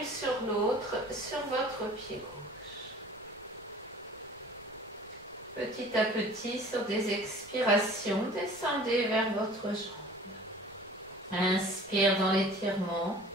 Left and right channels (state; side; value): noise; right; rumble, 26 dB below the sound